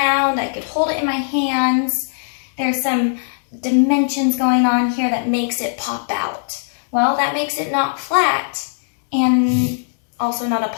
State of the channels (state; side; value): silent; right; digital silence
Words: I could hold it in my hands. There's some dimensions going on here that makes it pop out. Well, that makes it not flat and also not a